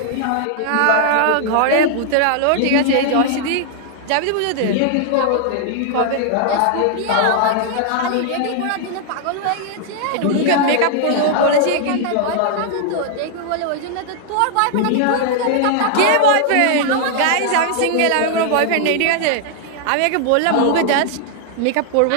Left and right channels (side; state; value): both; different; correlation 0.00